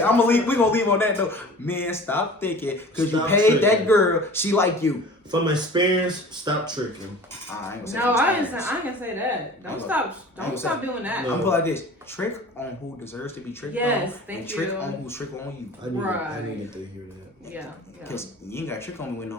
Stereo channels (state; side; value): normal; both; correlation 0.42